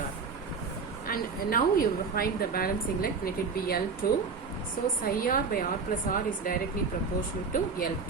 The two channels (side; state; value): left; quieter; 4.9 dB